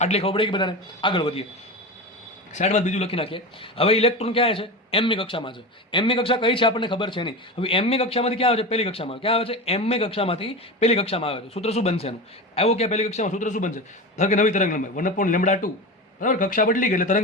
આટલી ખબર પડે કે બધાને? આગળ વધીએ, સાઈડમાં બીજું લખી નાખીએ. હવે ઇલેક્ટ્રોન ક્યાં છે? mમી કક્ષામાં છે. mમી કક્ષા કઈ છે આપણને ખબર છે નહીં. હવે mમી કક્ષામાંથી ક્યાં આવે છે? પહેલી કક્ષામાં. ક્યાં આવે છે? mમી કક્ષામાંથી પહેલી કક્ષામાં આવે છે. સૂત્ર શું બનશે એનું? આવ્યો ક્યાં? પહેલી કક્ષામાં. સૂત્ર શું બનશે? ધારો કે નવી તરંગ લંબાઈ 1/λ2, બરાબર. કક્ષા બદલી ગઈ એટલે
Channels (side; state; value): both; normal; correlation 0.25